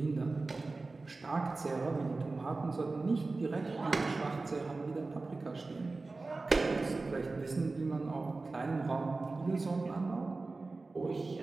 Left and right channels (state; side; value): quieter; left; 3.5 dB